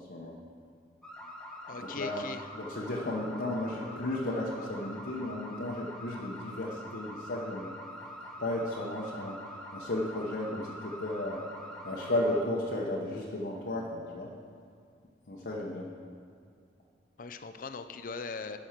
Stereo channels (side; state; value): both; normal; correlation 0.37